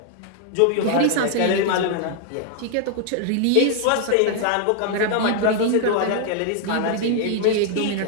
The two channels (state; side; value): different; both; correlation 0.00